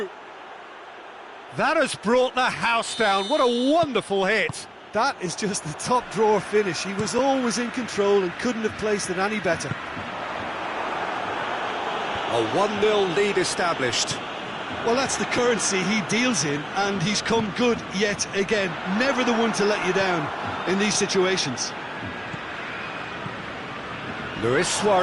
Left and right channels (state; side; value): identical; both; correlation 1.00